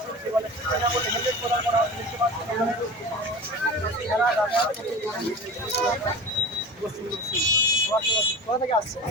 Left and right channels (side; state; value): both; normal; correlation 0.34